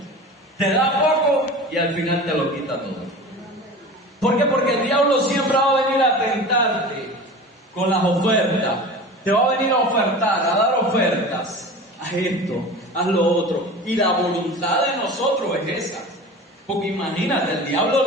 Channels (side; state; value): both; normal; correlation 0.35